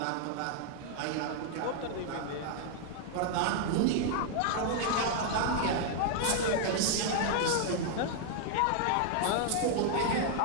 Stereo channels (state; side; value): different; both; correlation 0.00